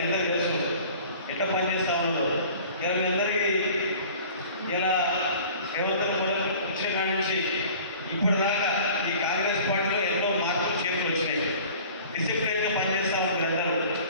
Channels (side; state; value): both; inverted; correlation -0.46